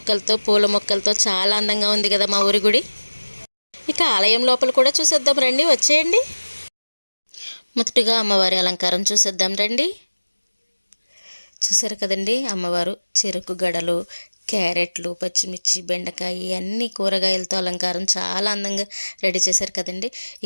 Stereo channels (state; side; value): inverted; both; correlation -1.00